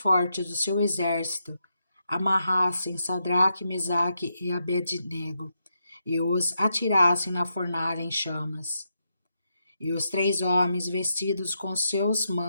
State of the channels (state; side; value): inverted; both; correlation -0.83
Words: do seu exército amarrassem Sadraque, Mesaque e Abednego e os atirassem na fornalha em chamas. E os 3 homens, vestidos com seus